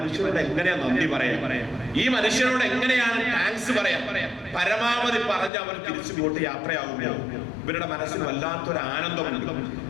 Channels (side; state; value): right; drops out; at 5.5 s